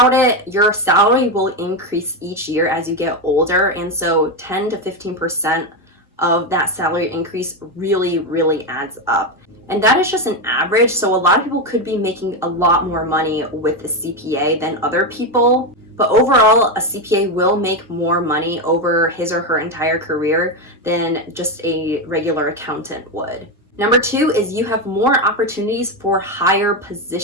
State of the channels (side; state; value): both; normal; correlation 0.10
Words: it, your salary will increase each year as you get older, and so 10 to 15% of that salary increase really adds up. And that is just an average, so a lot of people could be making a lot more money with a CPA than other people. But overall, a CPA will make more money over his or her entire career than just a regular accountant would. Number 2 is you have more opportunities for higher